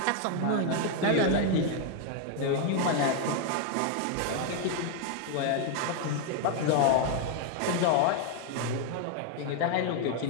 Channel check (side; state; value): both; different; correlation 0.00